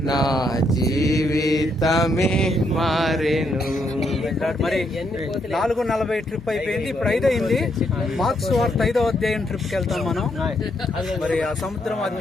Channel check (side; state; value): both; normal; correlation 0.76